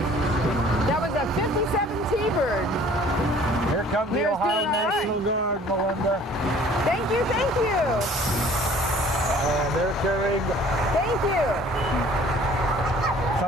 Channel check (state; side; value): normal; both; correlation 0.52